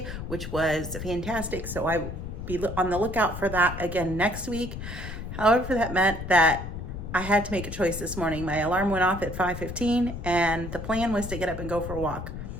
which was fantastic. So I will be on the lookout for that again next week. However, that meant that I had to make a choice this morning. My alarm went off at 5:15 and the plan was to get up and go for a walk.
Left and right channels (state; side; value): noise; left; rumble, 8 dB below the sound